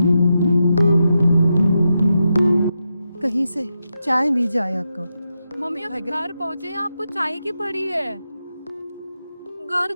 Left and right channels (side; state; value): both; inverted; correlation -0.87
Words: कहीं से चाय मिल जाए आपको। मम्मी अब घर पहुंचे, आपको चाय की पड़ी है, घर